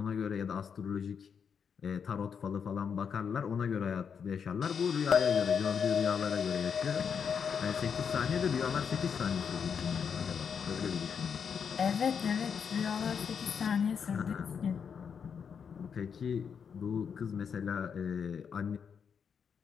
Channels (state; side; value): quieter; right; 6.8 dB